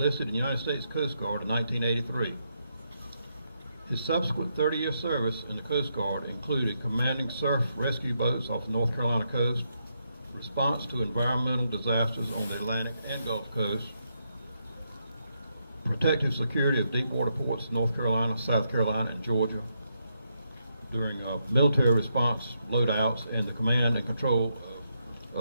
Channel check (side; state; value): both; inverted; correlation -0.80